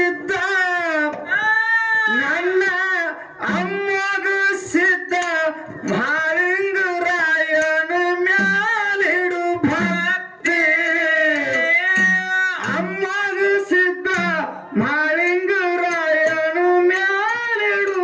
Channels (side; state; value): both; identical; correlation 1.00